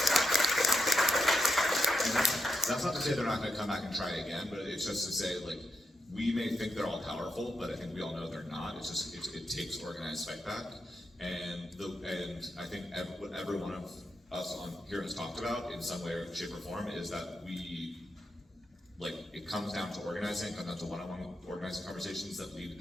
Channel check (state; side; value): normal; both; correlation 0.85